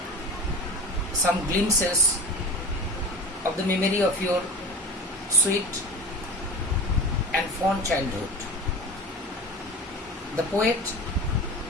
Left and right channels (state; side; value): normal; both; correlation 0.33